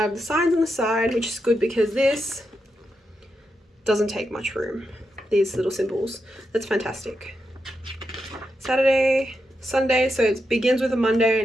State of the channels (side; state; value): both; normal; correlation 0.86